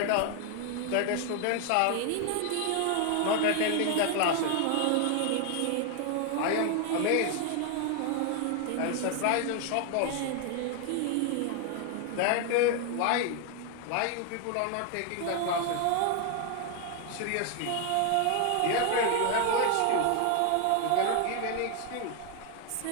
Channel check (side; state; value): both; different; correlation 0.00